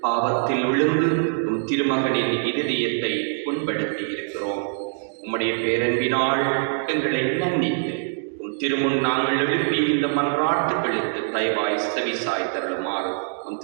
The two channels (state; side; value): silent; left; digital silence